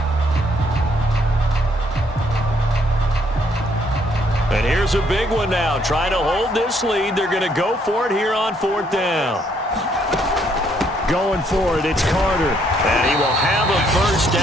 And here's a big one now. Trying to hold this lead. They're going to go for it here on fourth down. Going for it, it's Carter. And he will have a first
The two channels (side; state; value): both; normal; correlation 0.69